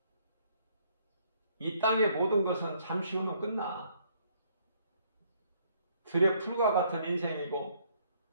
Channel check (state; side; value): inverted; both; correlation -0.66